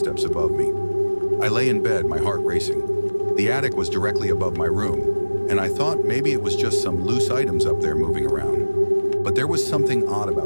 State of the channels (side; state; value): both; inverted; correlation -1.00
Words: above me. I lay in bed, my heart racing. The attic was directly above my room, and I thought maybe it was just some loose items up there moving around. But there was something odd